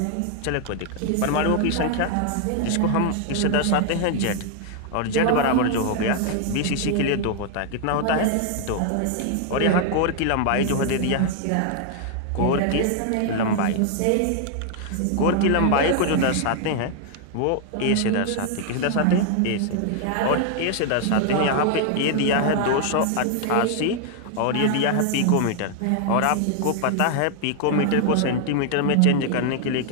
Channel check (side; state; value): both; different; correlation 0.00